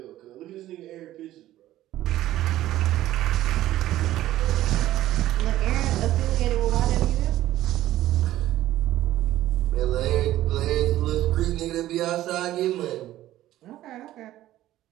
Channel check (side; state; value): left; quieter; 14.3 dB